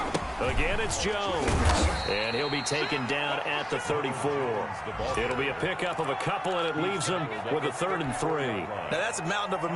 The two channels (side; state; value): both; identical; correlation 1.00